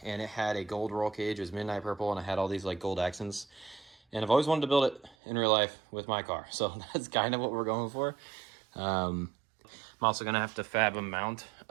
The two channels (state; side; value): drops out; left; at 5.2 s